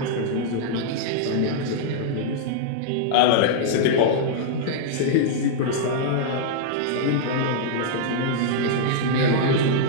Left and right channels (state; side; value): different; both; correlation -0.01